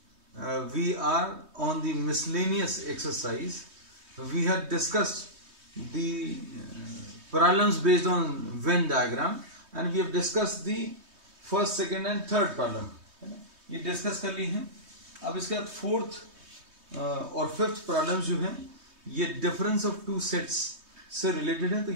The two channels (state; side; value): late; left; 3.2 ms